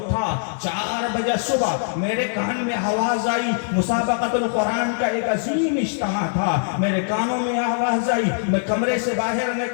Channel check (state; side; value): silent; right; 64 dB below the other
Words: 4 بجے صبح میرے کان میں آواز آئی، مسابقۃ القرآن کا ایک عظیم اجتماع تھا، میرے کانوں میں آواز آئی، میں کمرے سے باہر